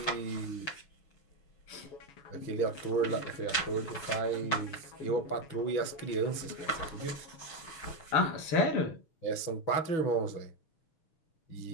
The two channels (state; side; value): late; right; 6.4 ms